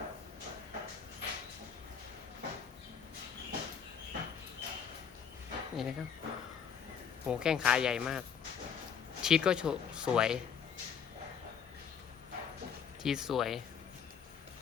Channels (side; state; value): right; quieter; 7.4 dB